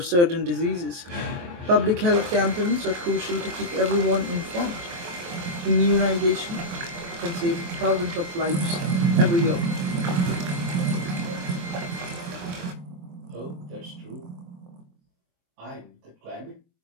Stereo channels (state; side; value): late; left; 23 ms